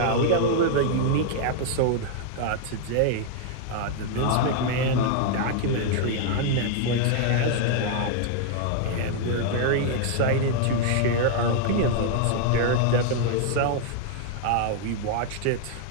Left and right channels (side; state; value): both; different; correlation 0.00